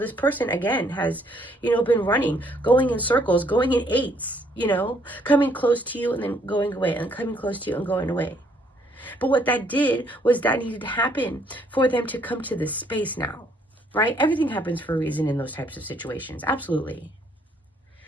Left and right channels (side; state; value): both; normal; correlation 0.67